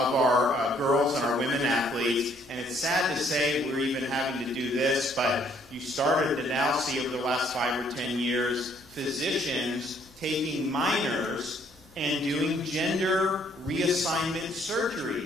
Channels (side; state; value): both; normal; correlation 0.65